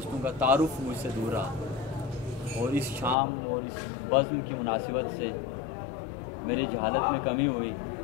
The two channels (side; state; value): right; drops out; at 3.2 s